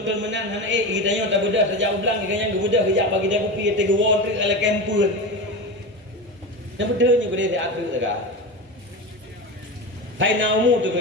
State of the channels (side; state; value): both; normal; correlation 0.23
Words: menang hana kita yang tak bedah sejak ulang kita yang bedah kejap bagi dia kopi tiga won tu ala kempun yang bedanya ku dia diatur tak Hai naumu tu